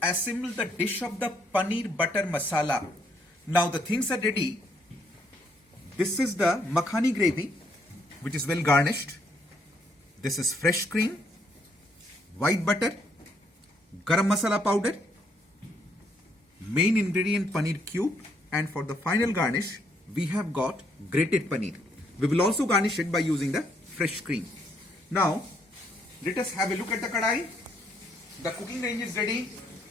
assemble the dish of the paneer butter masala. Now the things are ready. This is the makhani gravy, which is well garnished. This is fresh cream, white butter, garam masala powder, main ingredient paneer cube, and for the final garnish we have got grated paneer. We will also garnish it by using the fresh cream. Now let us have a look at the kadai. The cooking range is ready.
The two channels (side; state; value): both; normal; correlation 0.71